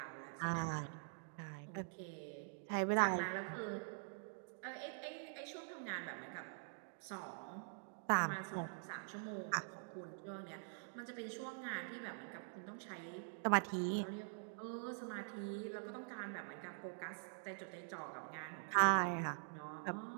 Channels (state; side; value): silent; left; digital silence